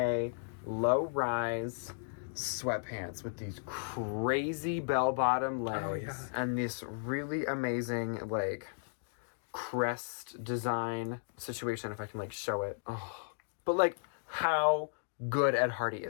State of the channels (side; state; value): right; silent; digital silence